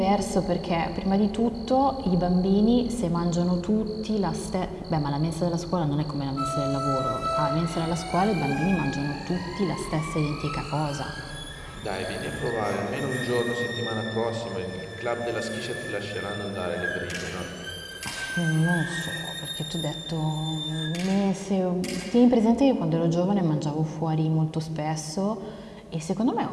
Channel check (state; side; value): identical; both; correlation 1.00